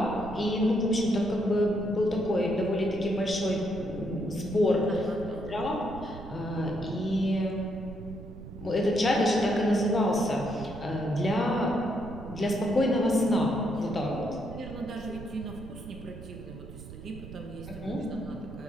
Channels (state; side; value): noise; right; rumble, 13 dB below the sound